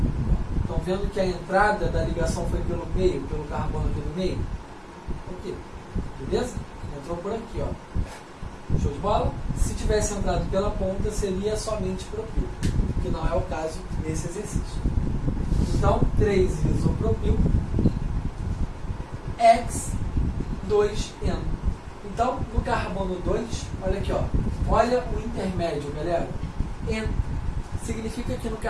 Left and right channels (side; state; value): both; identical; correlation 1.00